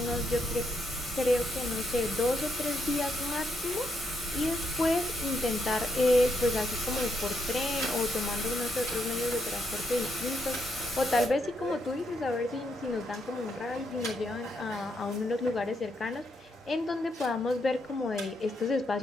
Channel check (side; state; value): both; normal; correlation 0.78